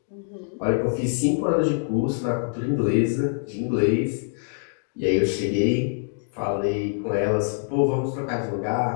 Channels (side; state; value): right; silent; digital silence